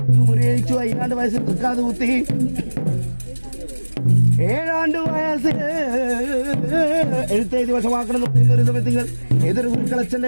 മുറിയഴിച്ചു. 5 വയസ്സിൽ തൃക്കാത് കുത്തി. 7 വയസ്സിൽ എഴുത്തെഴുതി വശമാക്കണം എന്ന് പറയുന്ന ഒരു സമയത്തിങ്ങൾ ഏതൊരു കുരുക്കളച്ചന്റെ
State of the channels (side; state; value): both; inverted; correlation -1.00